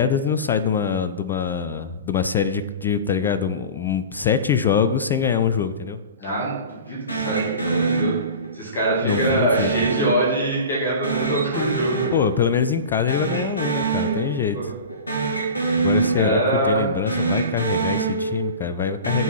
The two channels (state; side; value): inverted; both; correlation -0.33